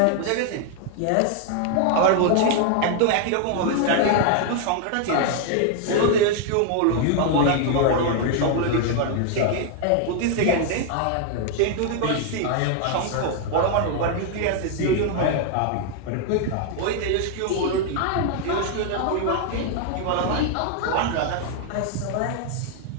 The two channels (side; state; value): both; different; correlation 0.00